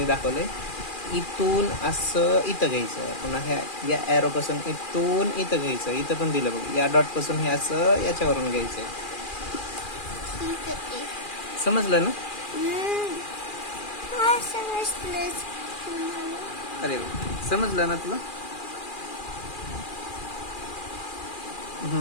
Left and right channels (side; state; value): right; late; 2.4 ms